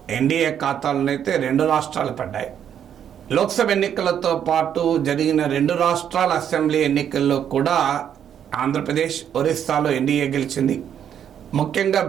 ఎన్డీఏ ఖాతాలోనైతే 2 రాష్ట్రాలు పడ్డాయి. లోక్సభ ఎన్నికలతో పాటు జరిగిన 2 రాష్ట్రాల అసెంబ్లీ ఎన్నికల్లో కూడా ఆంధ్రప్రదేశ్, ఒరిస్సాలో ఎన్డీఏ గెలిచింది. ముఖ్యంగా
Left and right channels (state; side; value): quieter; left; 9.1 dB